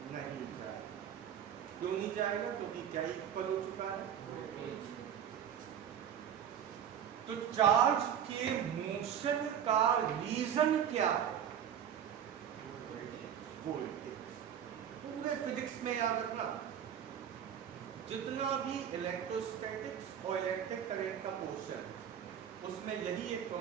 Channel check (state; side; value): quieter; left; 9.1 dB